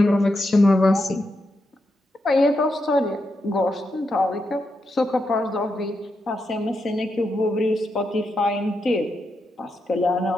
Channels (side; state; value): both; normal; correlation 0.84